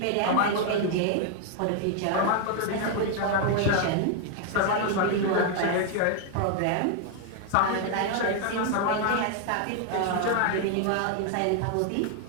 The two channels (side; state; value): both; different; correlation 0.00